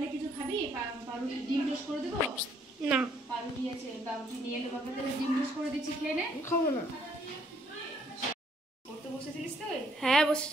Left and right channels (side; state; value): both; normal; correlation 0.67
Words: কিছু খাবি? পাউরুটি ডিম টোস্ট করে দেবো? না পাউরুটি আছে, পাউরুটি নিয়ে এলে বাবা, তাহলে ডিম টোস্ট করে দিচ্ছি, খেয়ে নে। খাবো না। পড়তে বসেছিলিস তুই? হ্যাঁ